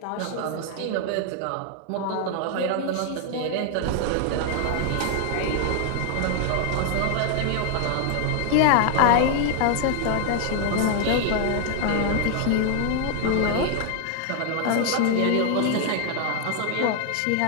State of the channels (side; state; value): both; different; correlation 0.00